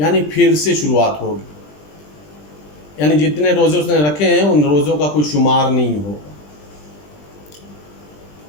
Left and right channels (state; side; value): late; right; 20 ms